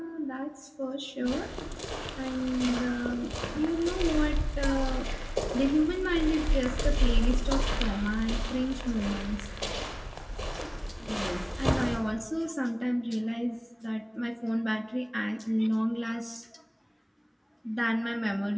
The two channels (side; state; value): both; identical; correlation 1.00